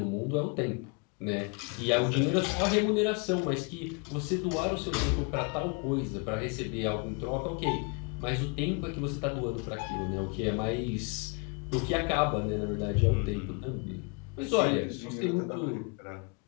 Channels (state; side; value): quieter; right; 34.2 dB